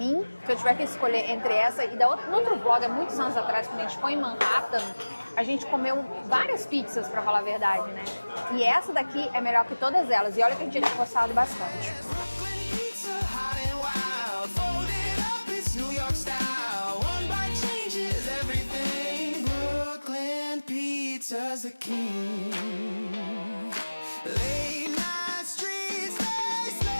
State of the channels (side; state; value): both; inverted; correlation -1.00